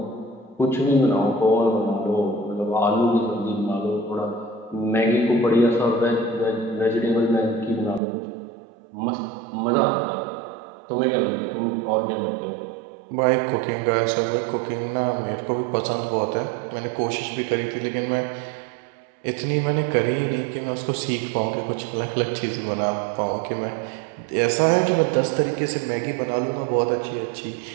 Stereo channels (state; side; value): drops out; left; at 8.0 s